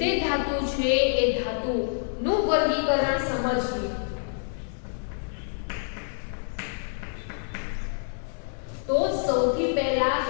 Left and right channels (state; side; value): silent; right; 60 dB below the other